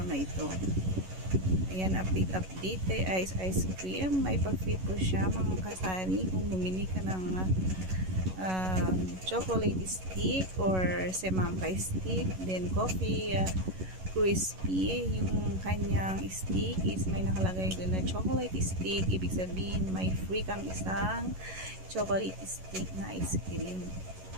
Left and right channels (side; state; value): left; late; 11 ms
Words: na ito. Ayan, update kay ice cream. May pa-free po siya mga kasari kung bumili ka ng chocolate stick or semangka stick, then coffee crispy. Yung kanyang stick is may nakalagay doon na chocolate stick. Ibig sabihin may free kang isang chocolate stick na ice cream.